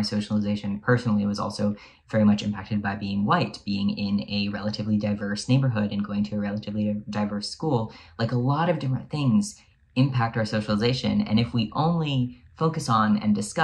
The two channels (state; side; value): identical; both; correlation 1.00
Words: socialization personally was also very much impacted by being white, being in a relatively diverse neighborhood and going to a relatively diverse school. Like, a lot of different things impact our socialization. And if we only focus on and